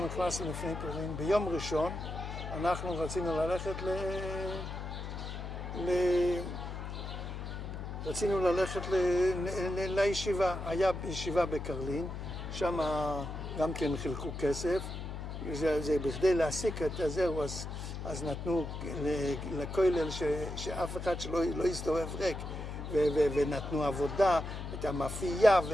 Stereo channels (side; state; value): left; noise; hum, 7 dB below the sound